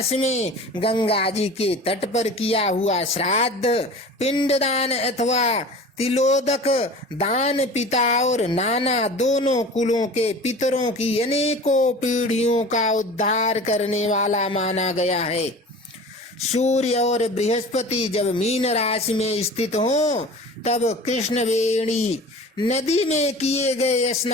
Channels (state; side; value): normal; both; correlation 0.38